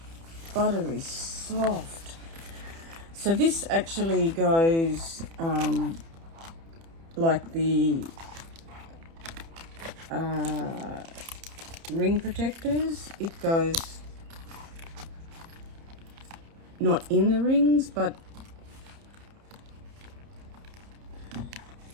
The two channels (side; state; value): left; late; 30 ms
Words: buttery soft. So this actually goes like the ring protectors. It goes not in the rings, but